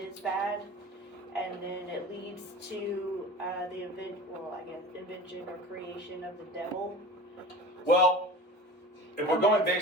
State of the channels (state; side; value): normal; both; correlation 0.36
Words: bad, and then it leads to the invention or creation of the devil. Well, if we're going